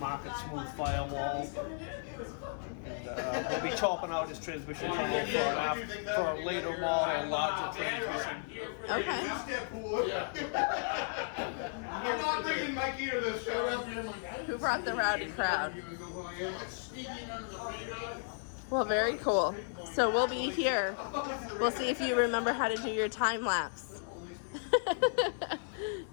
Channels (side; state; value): right; silent; 55 dB below the other